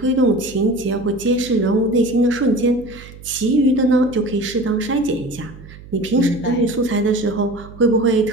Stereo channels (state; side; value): noise; right; hum, 18 dB below the sound